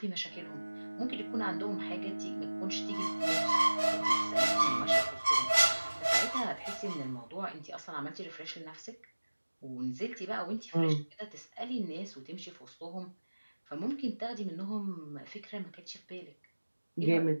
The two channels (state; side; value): inverted; both; correlation -1.00